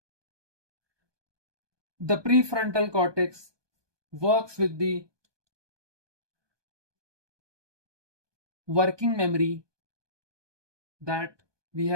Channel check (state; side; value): late; left; 1.2 ms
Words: The prefrontal cortex works with the working memory that we